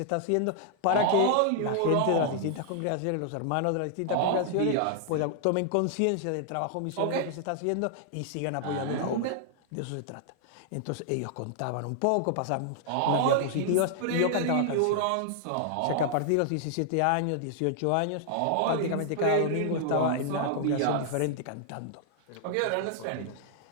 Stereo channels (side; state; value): both; different; correlation -0.01